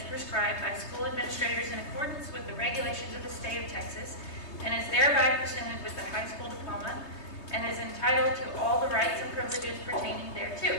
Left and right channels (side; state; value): right; late; 3.2 ms